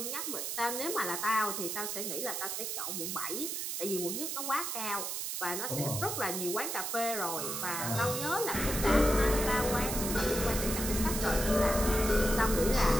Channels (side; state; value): right; noise; hiss, 3 dB below the sound